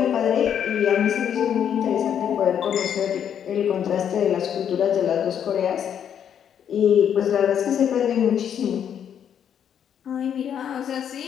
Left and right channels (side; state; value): right; quieter; 8.8 dB